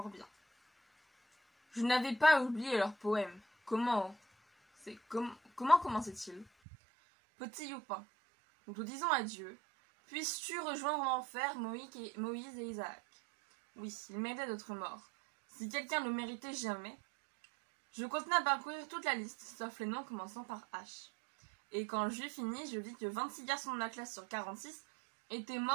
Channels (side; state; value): left; drops out; at 6.5 s